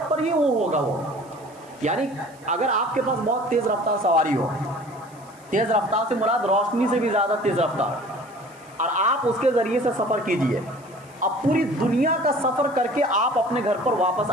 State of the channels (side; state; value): right; noise; hiss, 27 dB below the sound